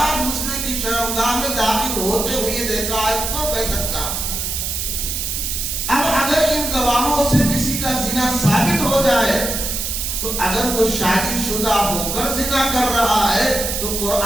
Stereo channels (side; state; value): right; noise; hiss, 2 dB below the sound